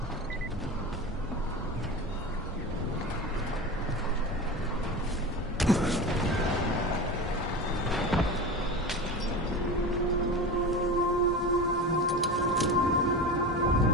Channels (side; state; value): both; normal; correlation 0.27